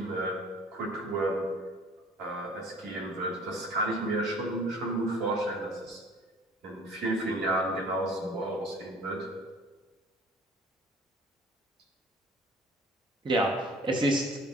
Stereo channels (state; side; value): normal; both; correlation 0.49